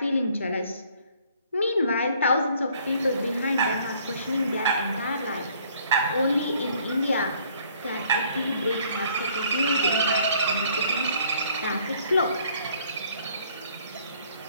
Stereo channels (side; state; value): both; inverted; correlation -0.61